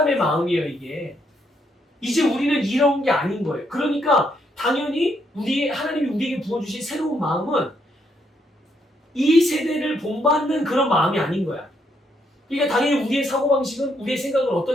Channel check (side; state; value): both; normal; correlation 0.75